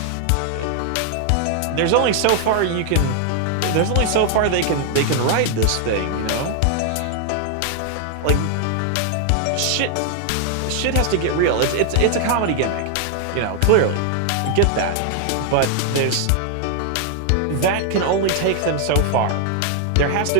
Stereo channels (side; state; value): both; different; correlation 0.00